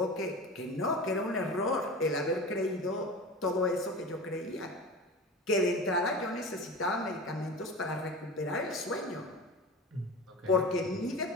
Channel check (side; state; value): both; normal; correlation 0.32